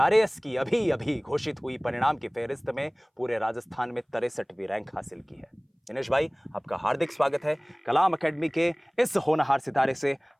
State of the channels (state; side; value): identical; both; correlation 1.00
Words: की अभी अभी घोषित हुई परिणाम की फहरिस्त में पूरे राजस्थान में 63वीं रैंक हासिल की है। दिनेश भाई, आपका हार्दिक स्वागत है। कलाम एकेडमी के इस होनहार सितारे से